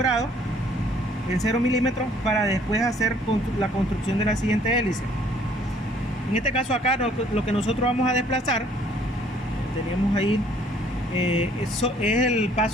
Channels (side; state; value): both; normal; correlation 0.60